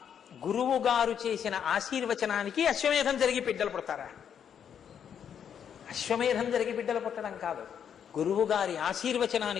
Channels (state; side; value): quieter; right; 8.3 dB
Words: గురువు గారు చేసిన ఆశీర్వచనానికి అశ్వమేధం జరిగి బిడ్డలు పుడతారా? అశ్వమేధం జరిగి బిడ్డలు పుట్టడం కాదు, గురువు గారి